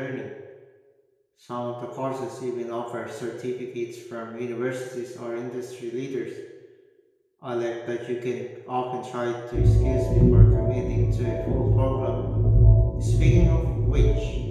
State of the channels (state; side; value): identical; both; correlation 1.00